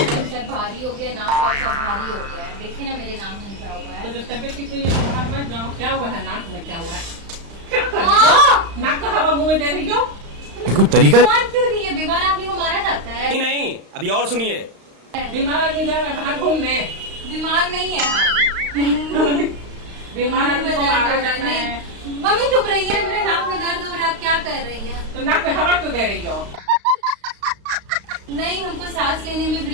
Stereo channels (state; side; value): late; left; 35 ms